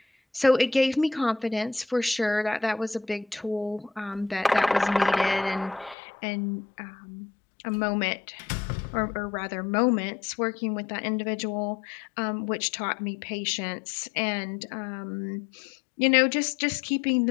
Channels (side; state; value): right; drops out; at 6.0 s